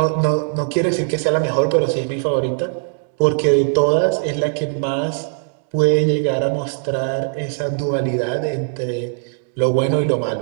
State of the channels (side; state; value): left; silent; 66 dB below the other